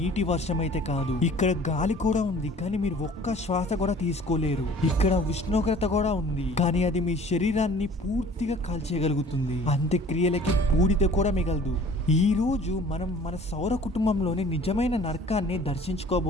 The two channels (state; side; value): normal; both; correlation 0.50